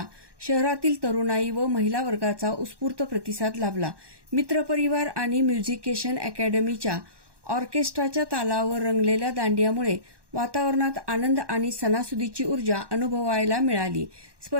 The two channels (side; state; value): left; late; 1.1 ms